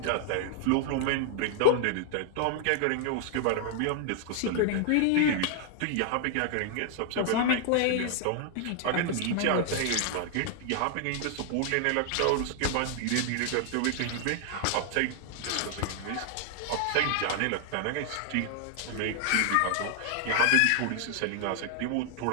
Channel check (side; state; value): both; different; correlation 0.00